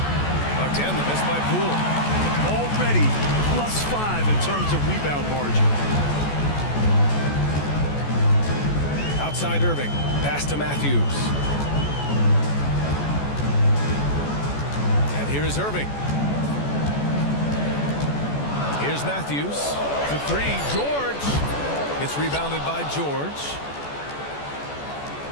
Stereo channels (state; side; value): late; right; 14 ms